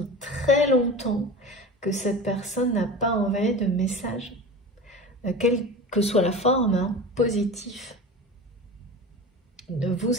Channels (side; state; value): both; normal; correlation 0.32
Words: très longtemps que cette personne n'a pas envoyé de message, quelle que soit la forme, hein, positif. Ne